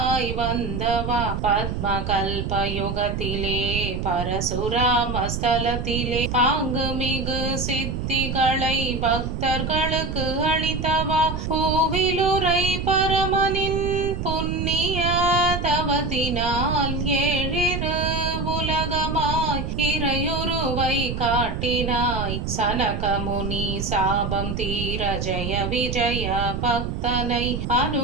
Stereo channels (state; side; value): noise; right; rumble, 3 dB below the sound